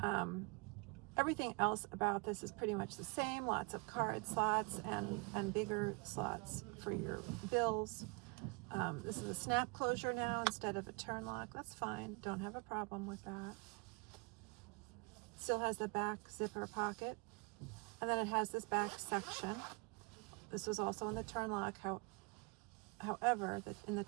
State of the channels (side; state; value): left; quieter; 29.9 dB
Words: Everything else about this is pretty much the same. Lots of card slots and bigger slots for your bills. This is a snap closure now instead of a turn lock. That's fine. Don't have a problem with that. Still has the back zipper pocket. And then it has this back section. This was also in the turn lock. However, in the